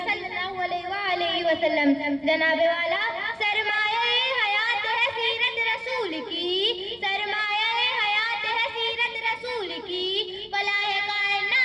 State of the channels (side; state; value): both; identical; correlation 1.00